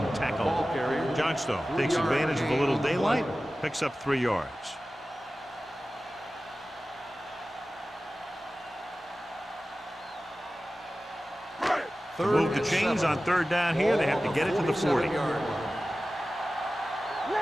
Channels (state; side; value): normal; both; correlation 0.96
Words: tackle. Johnstone takes advantage of a little daylight, picks up 3 yards. To move the chains on 3rd down here, they have to get it to the 40. Let's